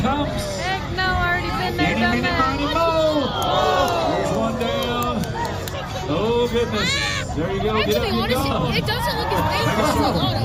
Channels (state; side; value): identical; both; correlation 1.00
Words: Heck no, I already been there, done that. There's one down. Oh goodness. There you go. Get up, get going. It doesn't look as painful as a lot